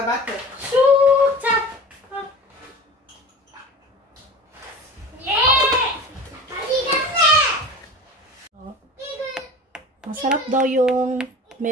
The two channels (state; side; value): normal; both; correlation 0.36